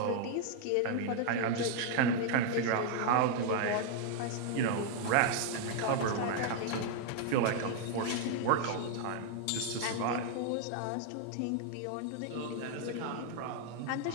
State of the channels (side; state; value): both; different; correlation 0.00